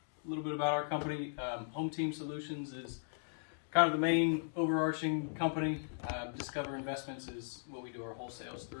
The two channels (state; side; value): silent; right; digital silence